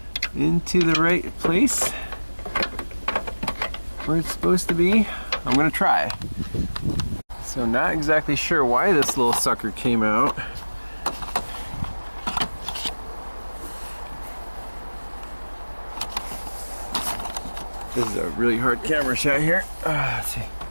the right place where it's supposed to be? I'm gonna try. So not exactly sure why this little sucker came out. This is a really hard camera shot here. Let's see.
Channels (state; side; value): inverted; both; correlation -1.00